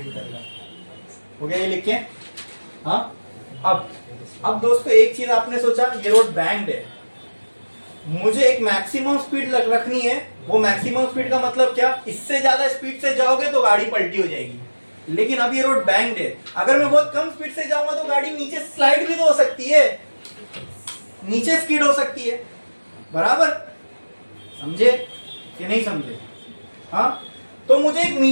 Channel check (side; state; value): both; inverted; correlation -1.00